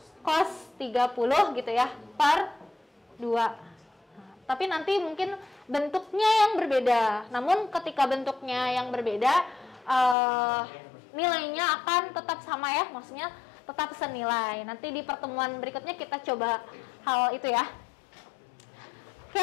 cos 30 gitu ya, per 2. Nah, tapi nanti mungkin bentuknya yang berbeda. Namun ketika bentuknya yang berbeda, nilainya akan tetap sama ya, maksudnya tetap senilai. Nanti di pertemuan berikutnya kita coba hal itu ya.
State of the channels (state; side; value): drops out; right; at 10.2 s